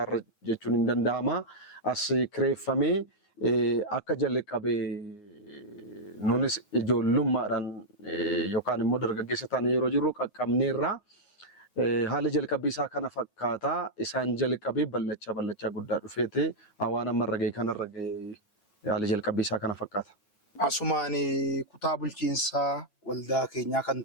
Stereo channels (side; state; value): right; late; 8.9 ms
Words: jechuun hin danda'ama. As kireeffamee akka jalqabe nunis ijoollummaadhaan yookaan immoo dargaggeessa taanee yeroo jirru qaqqabneerraa. Haala jalqabbii isaa kana fakkaataa isaan jalqabee ballachaa guddaa dhufeete waan amma irra ga'e kanarra ga'e haala jalqabbii isaa kana fakkaata. Asumaan kutaa bulchiinsaa waldaa keenyaa kan